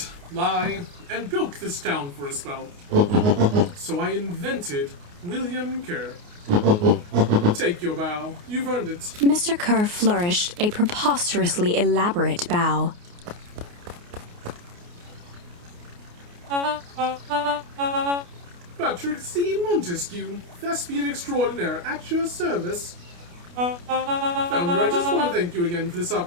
lie, and bilk this town for a spell. So I invented William Kerr. Take your bow. You've earned it. Mr. Kerr flourished a preposterously elaborate bow. Patrick C. Montesquieu, thespian extraordinaire, at your service. Founder, I just want to thank you again for this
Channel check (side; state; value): left; late; 29 ms